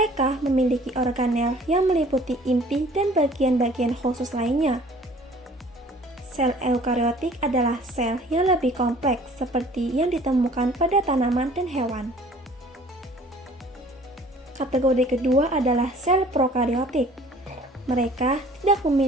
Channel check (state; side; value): normal; both; correlation 0.51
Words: memiliki organel yang meliputi inti dan bagian-bagian khusus lainnya. Sel eukariotik adalah sel yang lebih kompleks seperti yang ditemukan pada tanaman dan hewan. Kategori kedua adalah sel prokariotik. Mereka tidak